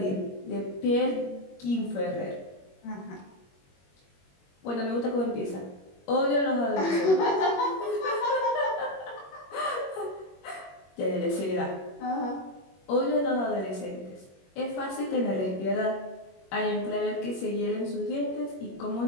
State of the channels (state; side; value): late; right; 21 ms